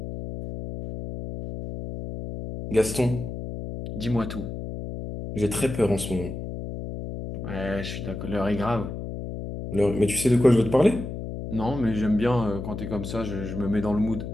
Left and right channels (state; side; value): noise; left; hum, 7 dB below the sound